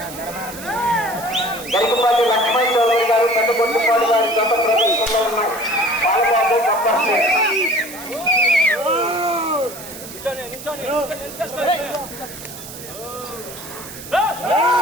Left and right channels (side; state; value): right; noise; hiss, 13 dB below the sound